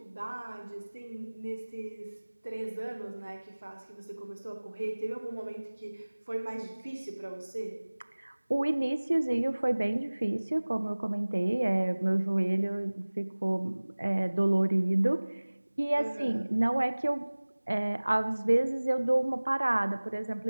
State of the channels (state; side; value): inverted; both; correlation -1.00